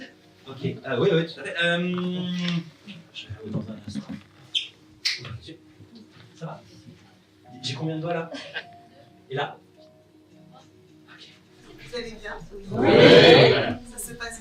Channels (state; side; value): identical; both; correlation 1.00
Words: Ok, oui, tout à fait. Je vais vous dans un instant. Ouvrez les yeux. Ça va? J'ai combien de doigts là? Et là? Vous allez bien? Oui. Ça se passe